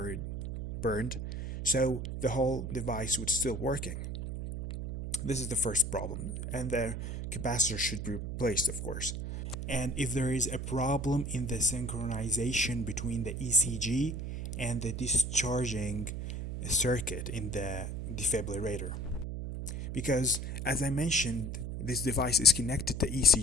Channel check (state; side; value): noise; right; hum, 4 dB below the sound